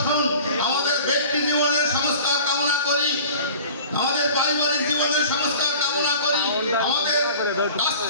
আমাদের ব্যক্তি জীবনের সংস্কার কামনা করি, আমাদের পারিবারিক জীবনের সংস্কার কামনা করি, আমাদের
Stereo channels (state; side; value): inverted; both; correlation -0.42